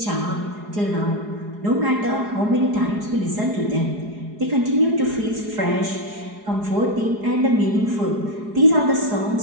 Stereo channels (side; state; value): left; late; 4.8 ms